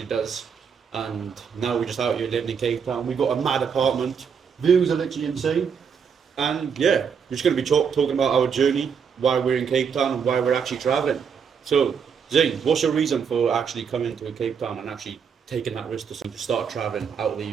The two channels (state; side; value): quieter; left; 6.7 dB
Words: does. And now we're just out here living in Cape Town. We've got a mad apartment. Views are literally insane. And yeah, we're just going to be talking about our journey, why we're in Cape Town, and why we're actually traveling. So, Zane, what's your reason for actually coming to Cape Town and actually taking that risk to start traveling out of the